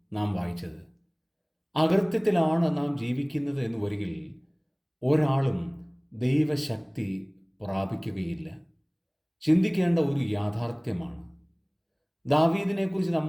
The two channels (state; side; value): identical; both; correlation 1.00